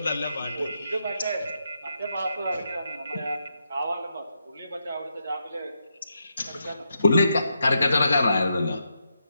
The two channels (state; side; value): inverted; both; correlation -0.82